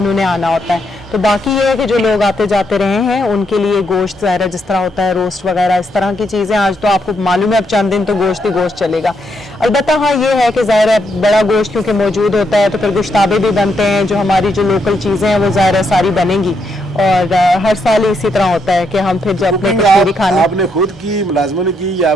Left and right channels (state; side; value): normal; both; correlation 0.78